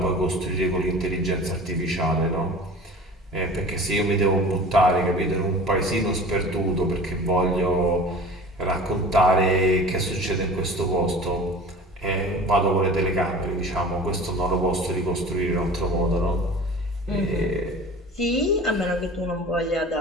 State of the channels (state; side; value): normal; both; correlation 0.40